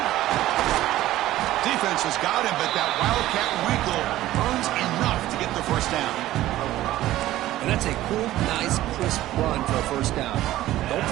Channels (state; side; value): quieter; left; 15.0 dB